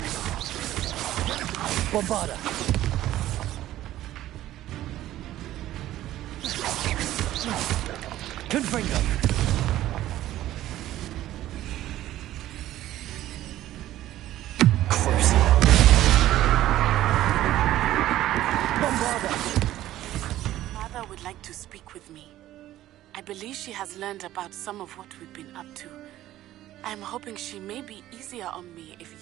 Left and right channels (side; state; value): left; quieter; 14.0 dB